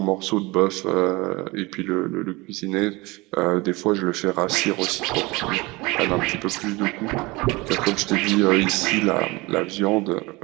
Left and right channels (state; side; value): quieter; left; 23.2 dB